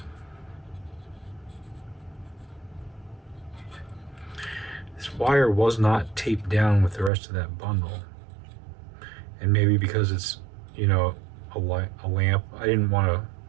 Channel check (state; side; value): drops out; left; at 7.1 s